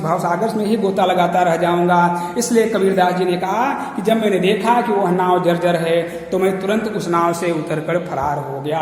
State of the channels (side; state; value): both; identical; correlation 1.00